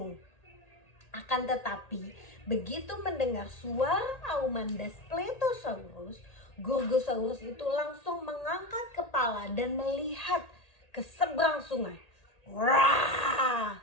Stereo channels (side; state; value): right; late; 1.8 ms